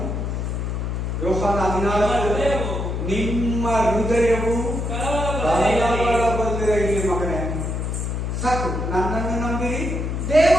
ಯೋಹಾನ 14. ನಿಮ್ಮ ಹೃದಯವು ಕಳವಳಗೊಳ್ಳದಿರ. ಇಲ್ಲಿ ಮಗನೇ ಸಾಕು, ನನ್ನನ್ನು ನಂಬಿರಿ,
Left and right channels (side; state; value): left; noise; hum, 2 dB below the sound